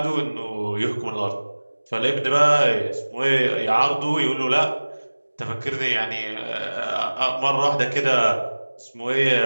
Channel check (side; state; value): both; inverted; correlation -1.00